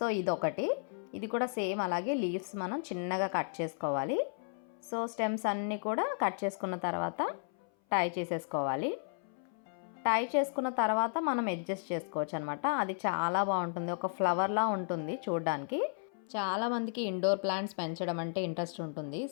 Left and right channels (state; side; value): silent; right; 55 dB below the other